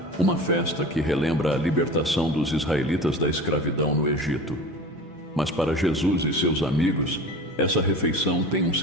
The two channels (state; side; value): normal; both; correlation 0.35